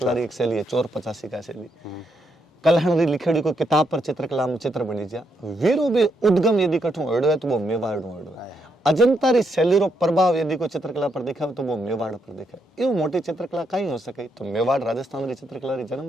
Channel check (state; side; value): normal; both; correlation 0.78